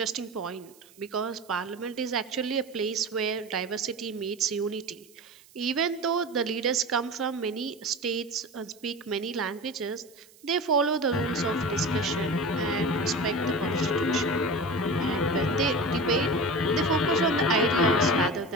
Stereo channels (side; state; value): right; noise; hiss, 26 dB below the sound